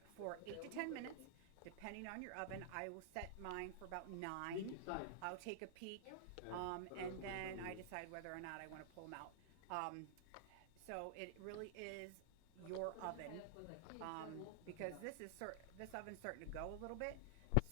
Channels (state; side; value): different; both; correlation -0.01